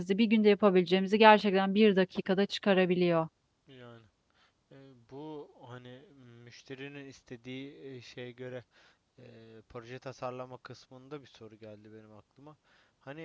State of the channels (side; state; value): both; identical; correlation 1.00